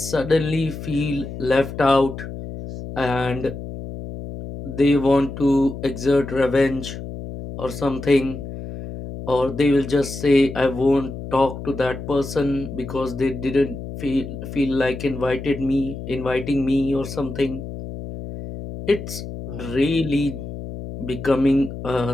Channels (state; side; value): noise; left; hum, 9 dB below the sound